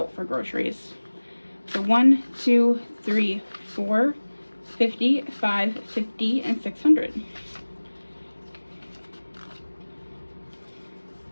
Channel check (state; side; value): inverted; both; correlation -1.00